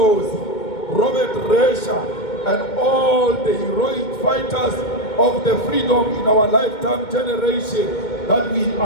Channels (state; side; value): late; right; 2.2 ms